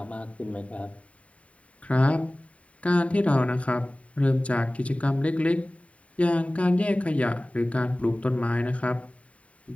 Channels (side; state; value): right; late; 0.066 ms